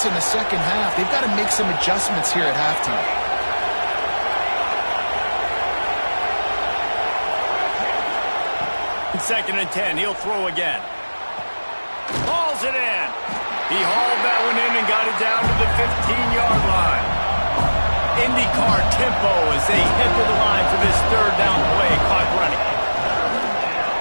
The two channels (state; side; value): inverted; both; correlation -1.00